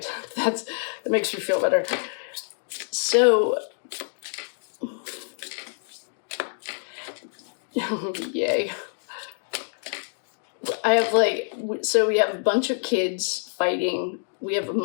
That makes me feel better. So, yay. We have a bunch of kids fighting. We have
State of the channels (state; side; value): silent; right; 61 dB below the other